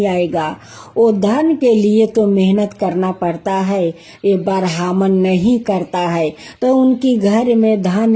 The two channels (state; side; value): identical; both; correlation 1.00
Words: आएगा। वो धन के लिए तो मेहनत करना पड़ता है, ये ब्राह्मण नहीं करता है तो उनकी घर में